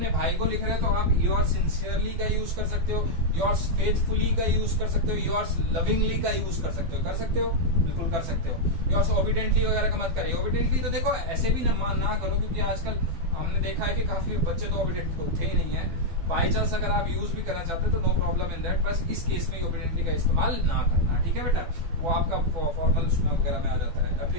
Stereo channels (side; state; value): left; late; 12 ms